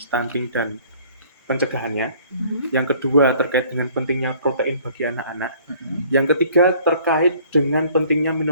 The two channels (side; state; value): both; inverted; correlation -0.56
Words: dan pencegahannya. Yang kedua terkait dengan pentingnya protein bagi anak-anak. Yang ketiga terkait dengan pentingnya